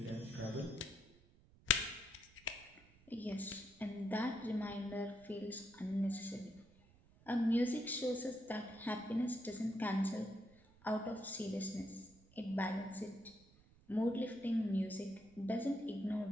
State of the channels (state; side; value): noise; right; rumble, 26 dB below the sound